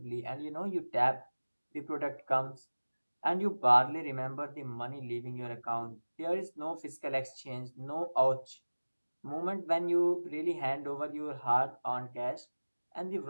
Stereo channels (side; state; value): both; inverted; correlation -1.00